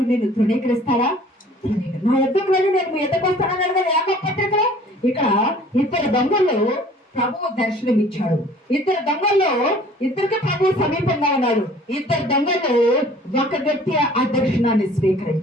నిన్ను తృణీకరిస్తాడా? నా ఎద్దకు వెళ్ళి నేను మీ ఎద్దకు వస్తానన్నాడు కదా యాకోబు పత్రికలో. ఇక్కడ 2 దొంగల్లో ప్రభువు దర్శనం ఇచ్చాడు. 2 దొంగల్లో ఇద్దరికి ప్రభువు సమీపంగా ఉన్నాడు. 2 దొంగలు ఒక వ్యక్తి ఆ దర్శనాన్ని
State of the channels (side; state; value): both; normal; correlation 0.51